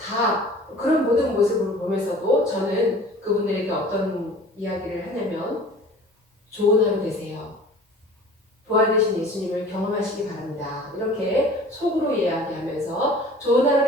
그런 모든 모습을 보면서도 저는 그분들에게 어떤 이야기를 하냐면 좋은 하루 되세요. 부활되신 예수님을 경험하시기 바랍니다. 이렇게 속으로 이야기하면서 좋은 하루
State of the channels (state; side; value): normal; both; correlation 0.45